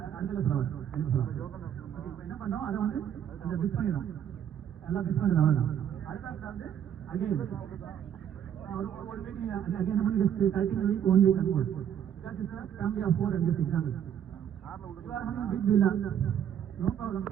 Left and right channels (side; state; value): left; quieter; 9.5 dB